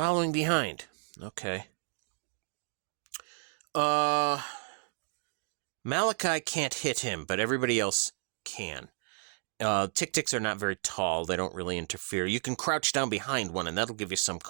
behind. Okay. Malachi can't hit him, but everybody else can. Tick-ticks are not very tall. They don't really interfere. You can crouch down behind one, and that'll give you some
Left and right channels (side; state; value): left; silent; 56 dB below the other